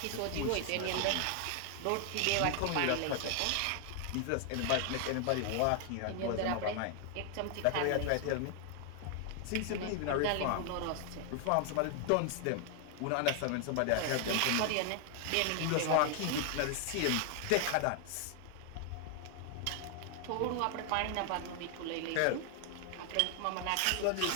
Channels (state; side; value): different; both; correlation 0.00